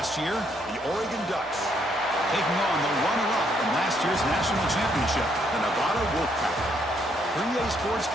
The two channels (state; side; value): normal; both; correlation 0.72